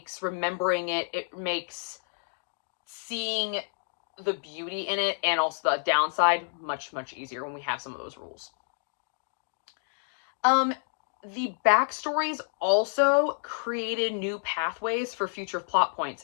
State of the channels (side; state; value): right; silent; digital silence